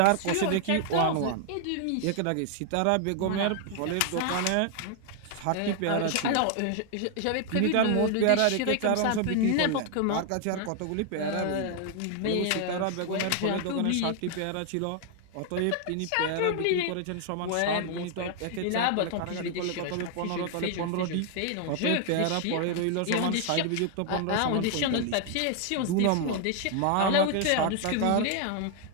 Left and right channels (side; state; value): both; different; correlation 0.00